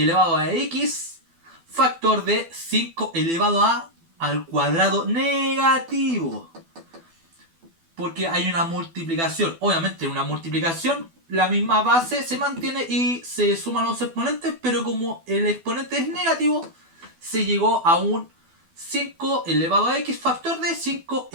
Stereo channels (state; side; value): late; left; 12 ms